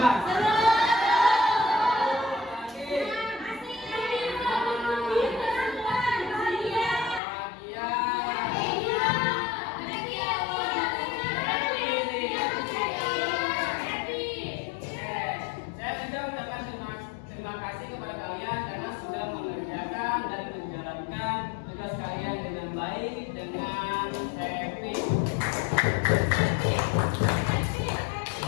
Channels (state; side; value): drops out; right; at 7.2 s